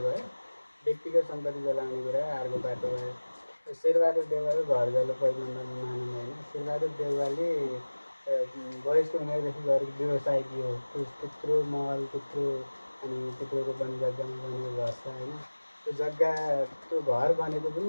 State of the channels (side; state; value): both; inverted; correlation -1.00